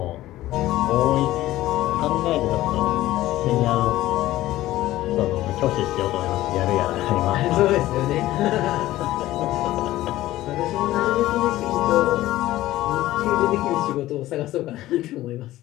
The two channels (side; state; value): right; quieter; 15.7 dB